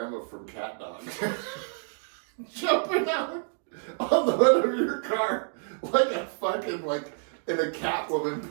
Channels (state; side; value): silent; left; 59 dB below the other